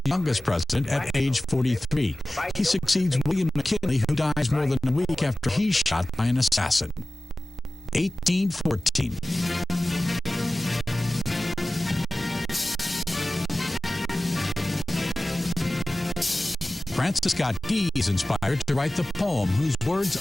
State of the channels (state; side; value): normal; both; correlation 0.97